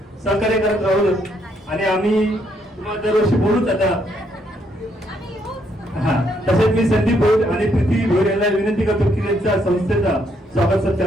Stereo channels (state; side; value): normal; both; correlation 0.73